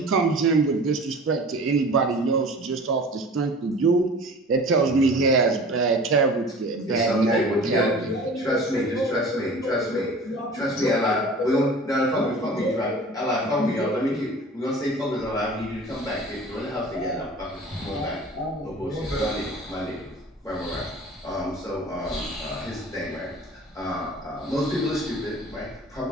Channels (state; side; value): normal; both; correlation 0.42